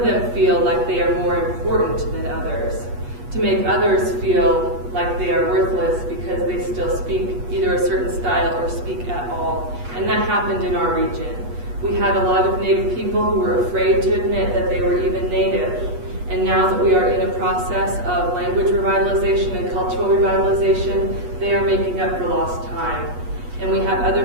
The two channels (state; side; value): late; left; 8.3 ms